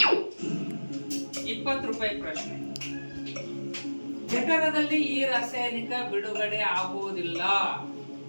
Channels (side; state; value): both; inverted; correlation -1.00